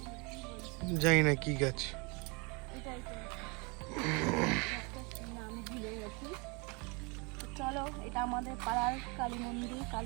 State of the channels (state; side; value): quieter; left; 30.2 dB